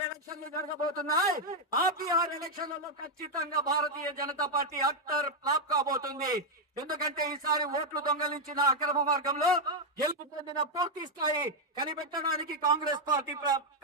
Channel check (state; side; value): normal; both; correlation 0.01